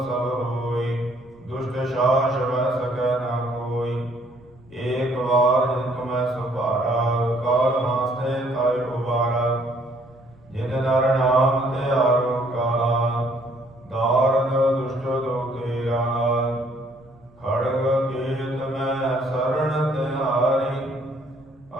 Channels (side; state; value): right; noise; rumble, 28 dB below the sound